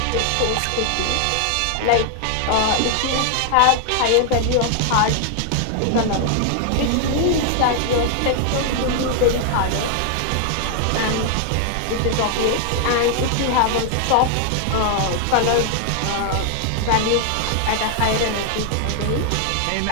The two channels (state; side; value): different; both; correlation 0.00